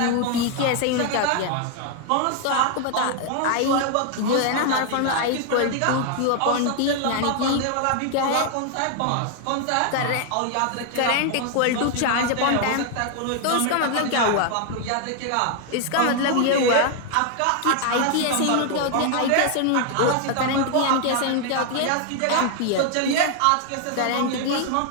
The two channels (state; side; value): different; both; correlation 0.00